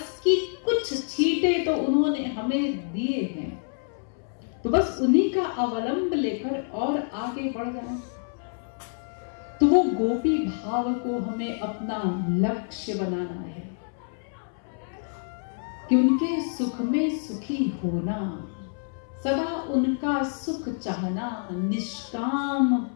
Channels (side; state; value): right; silent; 60 dB below the other